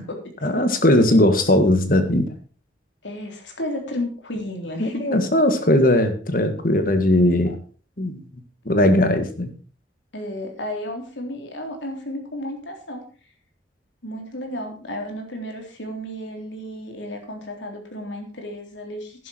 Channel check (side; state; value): both; normal; correlation 0.47